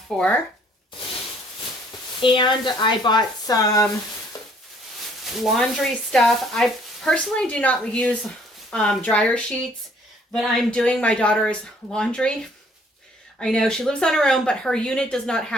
for. And I bought some laundry stuff. I personally do not use dryer sheets, but I'm doing my daughter's laundry. I know she lives on her own, but her unit does not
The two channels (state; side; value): normal; both; correlation 0.61